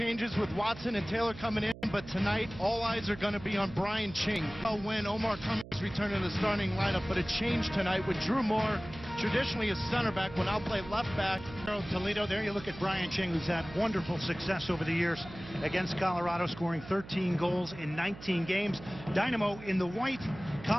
with Watson and Taylor coming in, but tonight all eyes are going to be on Brian Ching. When Omar Cummings returned to the starting lineup, but it changed tonight with Drew Moore, traditionally a center back, will now play left back. Toledo, there you look at Brian Ching, who's had wonderful success over the years against Colorado, scoring 13 goals in 19 games. Dynamo in the white,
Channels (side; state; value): right; noise; hum, 15 dB below the sound